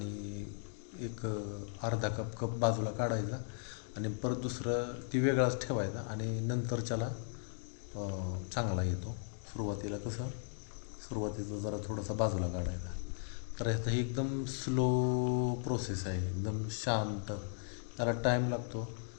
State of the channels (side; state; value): right; silent; digital silence